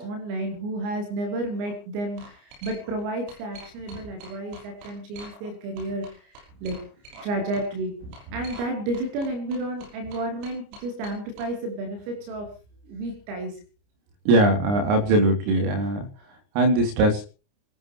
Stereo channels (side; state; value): left; late; 29 ms